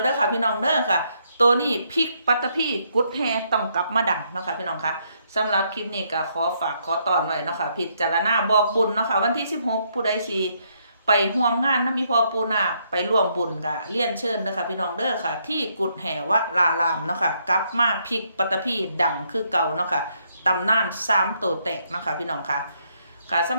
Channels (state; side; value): inverted; both; correlation -0.73